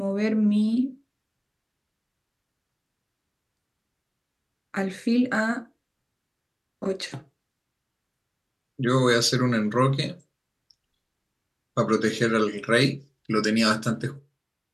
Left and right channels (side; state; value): both; identical; correlation 1.00